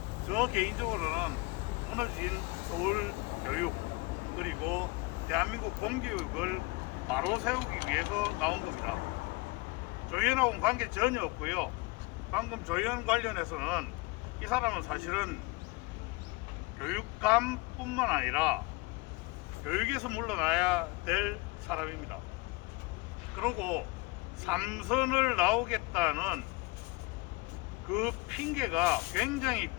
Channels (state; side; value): quieter; right; 25.4 dB